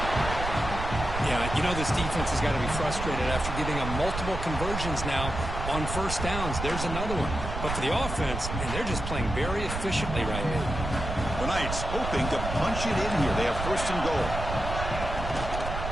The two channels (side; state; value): right; noise; rumble, 5 dB below the sound